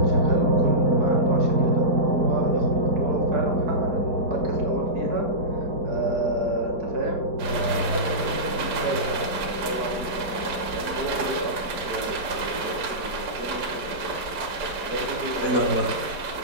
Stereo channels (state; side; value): late; left; 4.9 ms